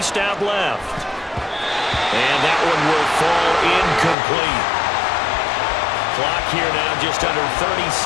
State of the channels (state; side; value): drops out; right; at 4.2 s